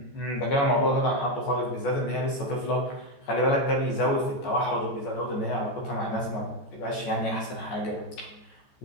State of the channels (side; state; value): right; late; 14 ms